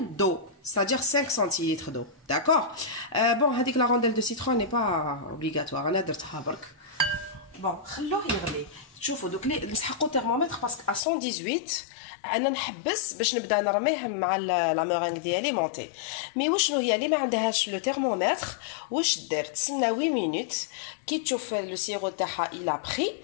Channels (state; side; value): drops out; right; at 11.0 s